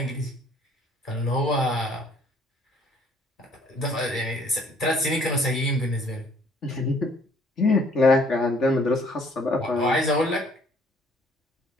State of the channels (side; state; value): both; normal; correlation 0.60